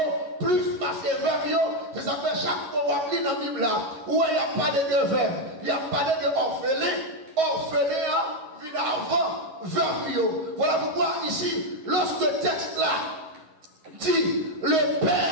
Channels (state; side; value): late; left; 11 ms